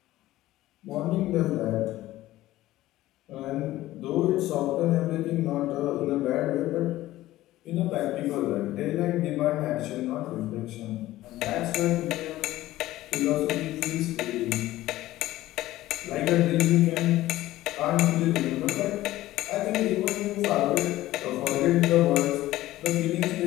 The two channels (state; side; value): quieter; right; 15.9 dB